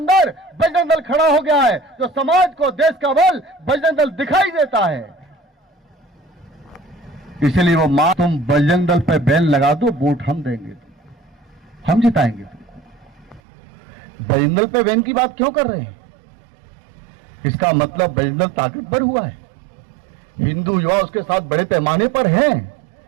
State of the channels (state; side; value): drops out; left; at 13.4 s